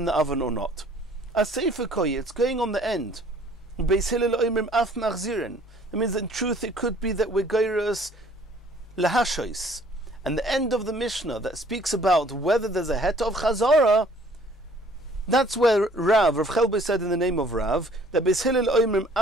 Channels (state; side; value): normal; both; correlation 0.56